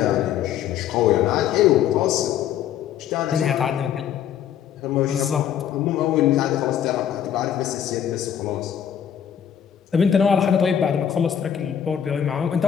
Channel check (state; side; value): quieter; right; 9.3 dB